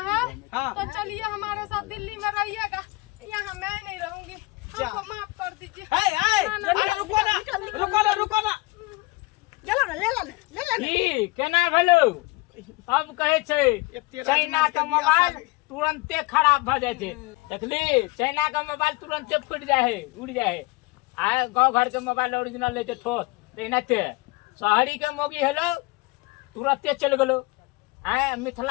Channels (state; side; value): quieter; right; 23.8 dB